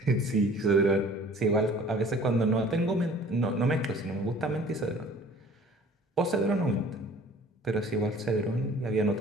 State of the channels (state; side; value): normal; both; correlation 0.50